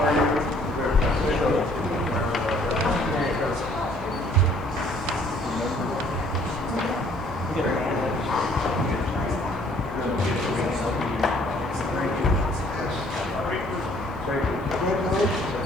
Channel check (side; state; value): both; normal; correlation 0.60